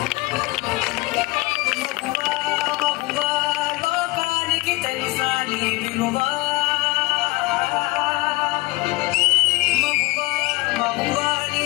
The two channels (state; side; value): quieter; right; 21.7 dB